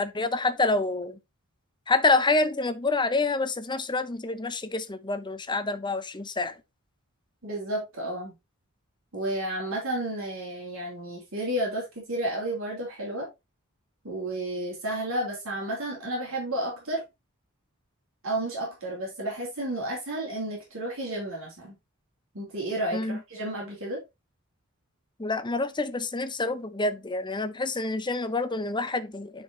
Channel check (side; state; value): both; normal; correlation 0.05